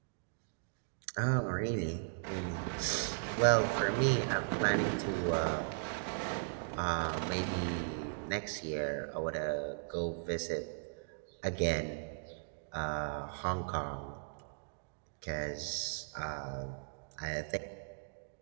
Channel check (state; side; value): silent; left; digital silence